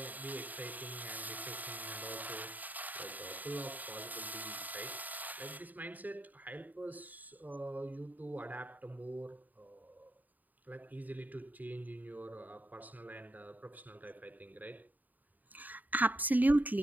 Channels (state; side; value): late; left; 0.083 ms